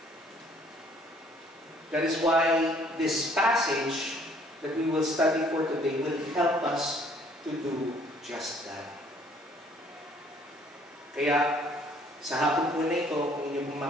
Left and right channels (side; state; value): both; normal; correlation 0.60